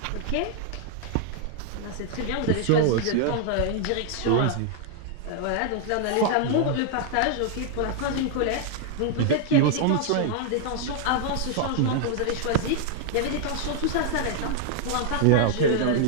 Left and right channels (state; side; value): different; both; correlation 0.00